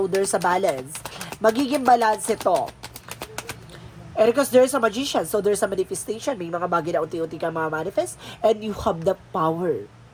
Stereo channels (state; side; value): identical; both; correlation 1.00